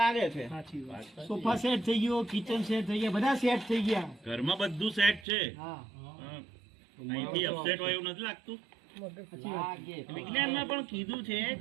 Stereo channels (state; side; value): drops out; left; at 5.2 s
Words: છે. સાચી વાત. સોફા સેટ થઈ ગયો, કિચન સેટ થઈ ગયા, બધા સેટ થઈ ગયા. ઘરમાં બધું સેટ છે. હા, અહીંથી અપસેટ હોય એવું નથી લાગતું. વિજ્ઞાનમાં પણ કીધું છે